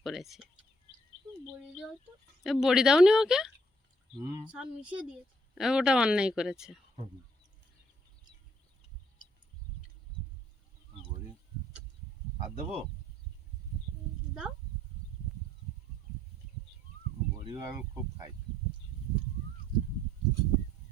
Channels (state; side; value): normal; both; correlation 0.65